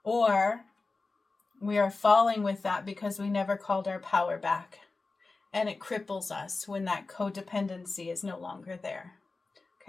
Or we are falling with that because we never called our power back. and it cripples us when that codependency is no longer there.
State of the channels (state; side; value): quieter; right; 3.7 dB